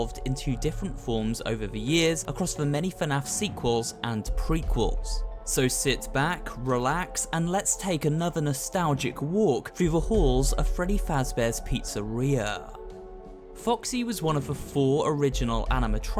into different forms over the years across the many FNaF sequels and prequels. So sit back, relax, and let's take another nostalgic walk through the halls of Freddy Fazbear's Pizzeria. Foxy was one of the 4 original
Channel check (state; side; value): identical; both; correlation 1.00